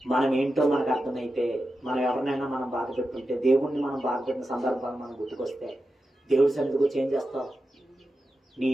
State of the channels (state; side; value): normal; both; correlation 0.91